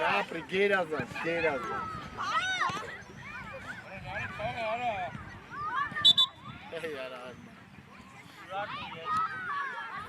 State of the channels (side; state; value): both; identical; correlation 1.00